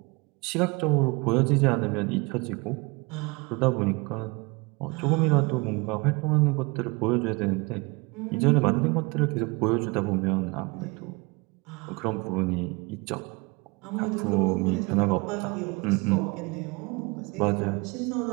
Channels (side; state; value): left; quieter; 27.2 dB